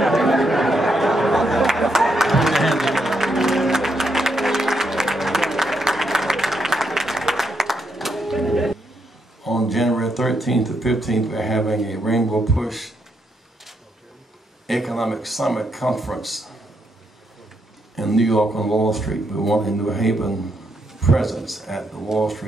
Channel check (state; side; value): normal; both; correlation 0.78